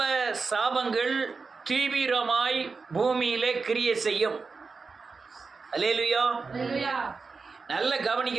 சாபங்கள் தீவிரமாய் பூமியிலே கிரியை செய்யும். அல்லேலூயா. நல்ல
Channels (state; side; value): quieter; left; 4.5 dB